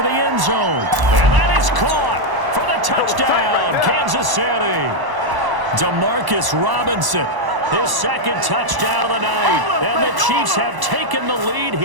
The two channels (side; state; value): left; late; 1.0 ms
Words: the end zone. And that is caught for the touchdown, Kansas City. Demarcus Robinson, his 2nd touchdown of the night. And the Chiefs have taken the lead